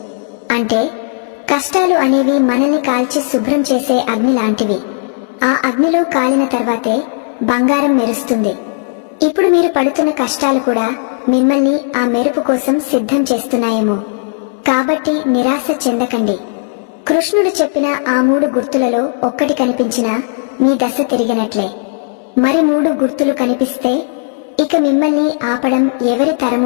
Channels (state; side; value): silent; right; 61 dB below the other